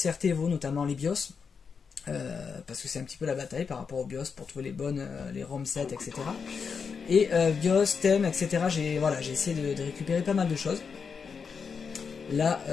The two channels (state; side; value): quieter; right; 5.8 dB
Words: Evo, notamment les BIOS. Parce que c'est un petit peu la bataille par rapport aux BIOS pour trouver les bonnes, les ROM 7, etc. Et BIOS, thème, etc. J'ai essayé de récupérer pas mal de choses. Là,